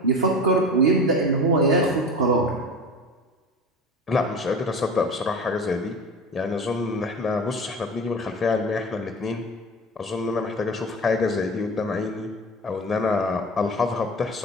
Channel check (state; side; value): normal; both; correlation 0.33